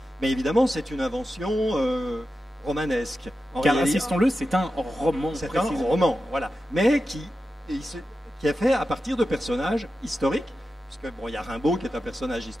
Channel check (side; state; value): both; normal; correlation 0.91